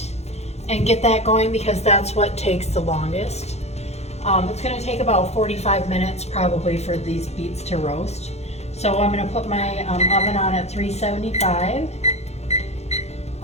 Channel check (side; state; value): right; late; 0.31 ms